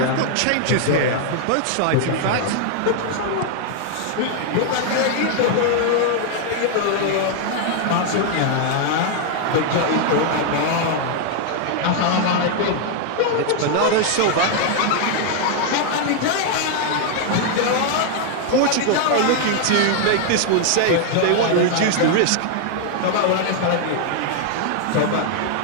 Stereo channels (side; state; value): both; different; correlation 0.00